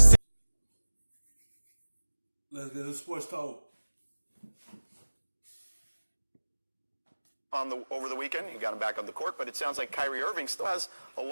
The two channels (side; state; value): both; inverted; correlation -1.00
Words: Let's get the sports talk. Over the weekend, he got him back on the court, but it sounds like Kyrie Irving still has a